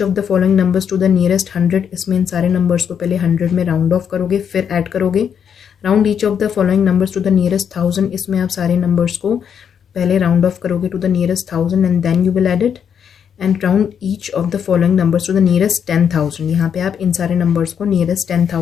of the following numbers to the nearest 100, इसमें इन सारे नंबर्स को पहले 100 में राउंड ऑफ करोगे फिर ऐड करोगे। Round each of the following numbers to the nearest 1000, इसमें आप सारे नंबर्स को पहले राउंड ऑफ करोगे to the nearest 1000 and then you will add it. And round each of the following numbers to the nearest 10,000, यहाँ पे आप इन सारे नंबर्स को नियरेस्ट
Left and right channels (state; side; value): quieter; right; 7.8 dB